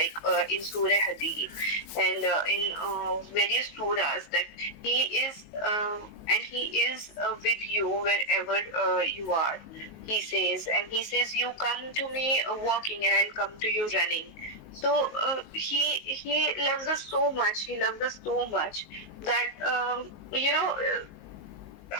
in Surah Hadid and in various surahs, that He is with you wherever you are. He says, you come to me walking and I'll come to you running. So he loves us so much. He loves us so much that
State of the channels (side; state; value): right; late; 19 ms